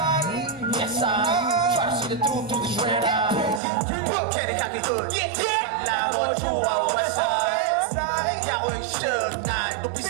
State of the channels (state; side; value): drops out; left; at 3.6 s